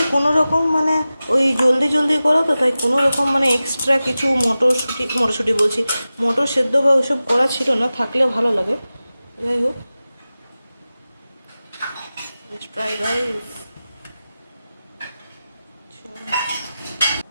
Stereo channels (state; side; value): inverted; both; correlation -0.95